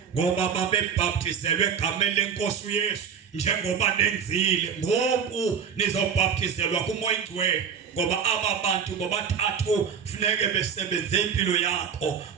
Ngoba babebhaptizelwe egameni lenkosi uYesu njengoba nenzile. Ngoku nizobhaptizelwa kumoya oyingcwele. Ngoba aba bantu bobathathu funeke besebenze impilo yakho.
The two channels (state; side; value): quieter; left; 7.1 dB